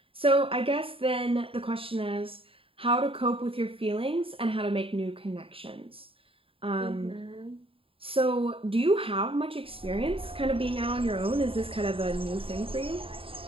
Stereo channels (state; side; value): late; left; 0.27 ms